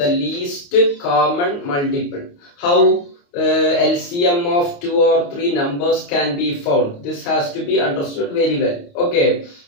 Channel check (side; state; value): right; late; 29 ms